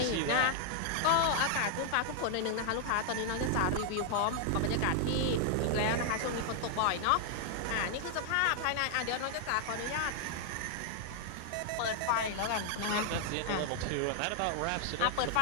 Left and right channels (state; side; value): different; both; correlation 0.00